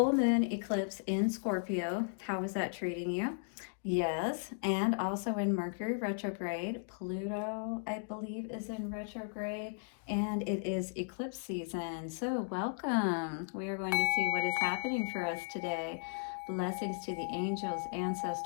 moon eclipse in Scorpio. How is that treating you? Yes, and also in Mercury retrograde. Pluto, I believe, is in retrograde, and it is eclipse season. So welcome. We are going to see what is happening for us today. Blessings to the angels,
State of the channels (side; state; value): right; silent; digital silence